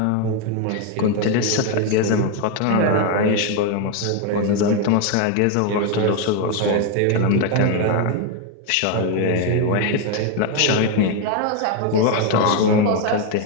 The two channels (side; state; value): both; different; correlation 0.01